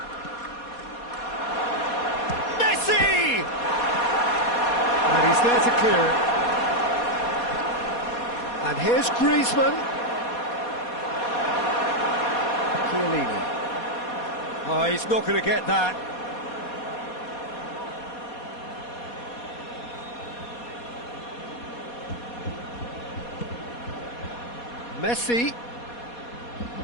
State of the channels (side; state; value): right; late; 4.2 ms